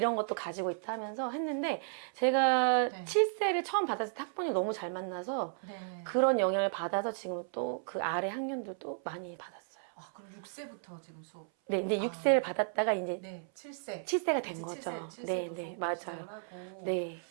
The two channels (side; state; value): left; silent; 55 dB below the other